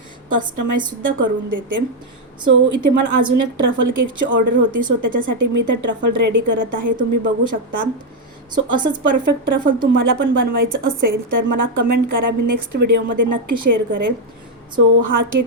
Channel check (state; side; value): normal; both; correlation 0.02